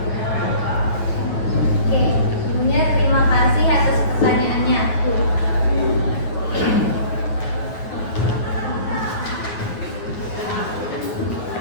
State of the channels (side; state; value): right; late; 9.5 ms